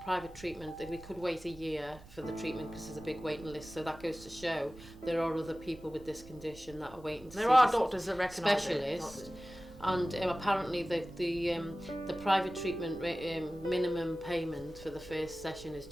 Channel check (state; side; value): noise; right; rumble, 19 dB below the sound